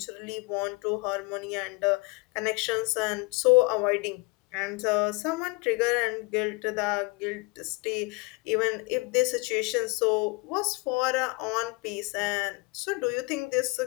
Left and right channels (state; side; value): quieter; right; 27.3 dB